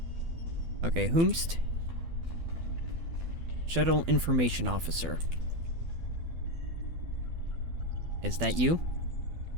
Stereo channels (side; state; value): left; late; 12 ms